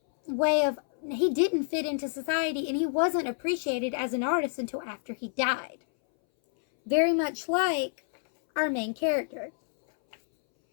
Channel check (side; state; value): right; silent; 59 dB below the other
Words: way of, he didn't fit into society, and he wasn't appreciated as an artist until after he died. Very much like our main character.